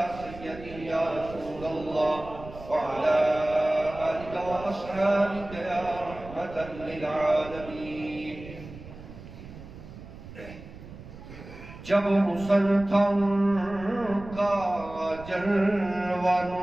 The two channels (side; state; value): right; noise; rumble, 15 dB below the sound